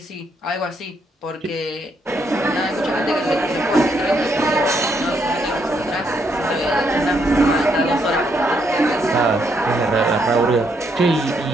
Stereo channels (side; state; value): both; normal; correlation 0.75